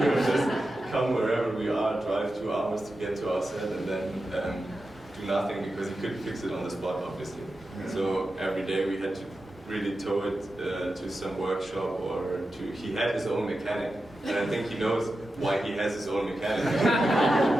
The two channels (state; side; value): normal; both; correlation 0.91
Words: he would just come wherever we are, drive 2 hours to get to our set, and then do nothing, because he couldn't fix it on the spot, obviously. Yeah. So every day we had to really tow it to some workshop, or he had his own mechanic, and I think he knows why he has his own mechanic.